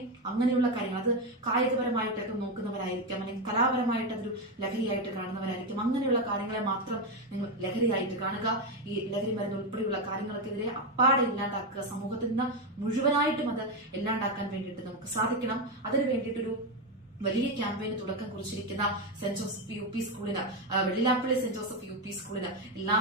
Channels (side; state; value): both; normal; correlation 0.09